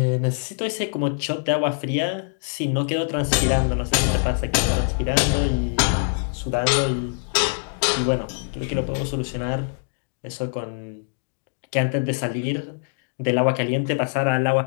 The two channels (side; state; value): right; silent; digital silence